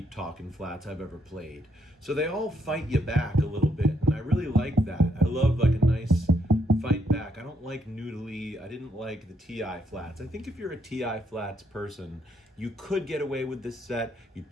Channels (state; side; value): normal; both; correlation 0.75